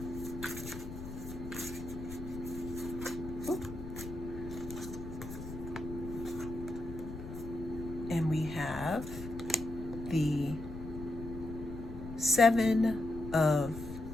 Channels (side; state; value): left; noise; rumble, 10 dB below the sound